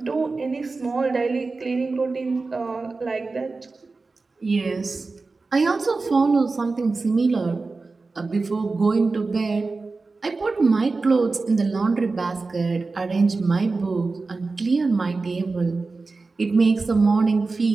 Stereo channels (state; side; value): quieter; left; 3.9 dB